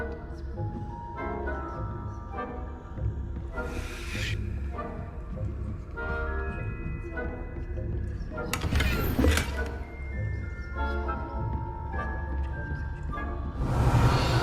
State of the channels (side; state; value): both; identical; correlation 1.00